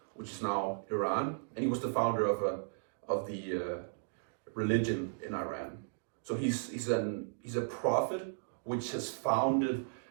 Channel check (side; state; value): left; silent; digital silence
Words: which is now Iran, and he was the founder of the religion in Iran. So he's a prophet which has founded